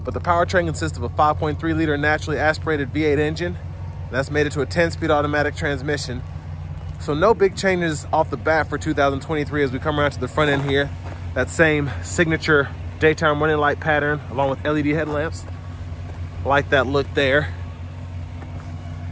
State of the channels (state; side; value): identical; both; correlation 1.00